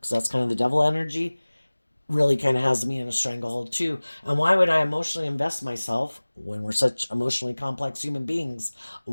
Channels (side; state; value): both; inverted; correlation -1.00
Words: that's kind of the devil energy, really kind of has me in a stranglehold too. And why would I emotionally invest myself when we're such emotionally complex human beings?